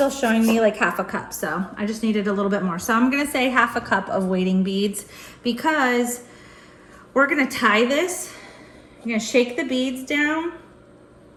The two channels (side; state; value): both; identical; correlation 1.00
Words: showing me like half a cup, so I just needed a little bit more. So I'm gonna say half a cup of weighting beads, because we're gonna tie this. You're gonna shake the beads down,